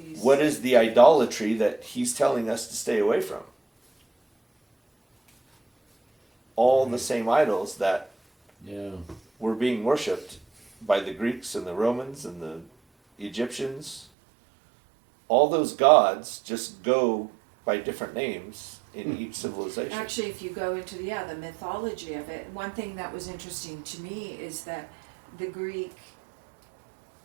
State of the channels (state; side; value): drops out; left; at 14.1 s